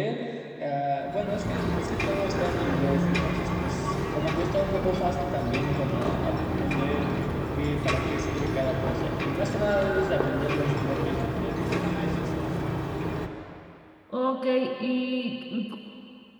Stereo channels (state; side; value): identical; both; correlation 1.00